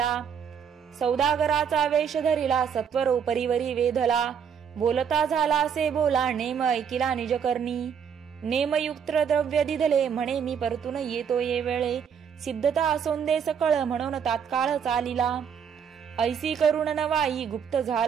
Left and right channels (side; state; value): left; quieter; 7.5 dB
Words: सौदागराचा वेश धरिला सत्वर उपरीवरी वेधला, बोलता झाला असे बोला नेम ऐकिला निजकर्णी, नेमयुक्त द्रव्य दिधले म्हणे मी परतून येतो ये वेळे, सिद्धता असोंदे सकळ म्हणून तात्काळ चालिला, ऐसी करुण नवाई गुप्त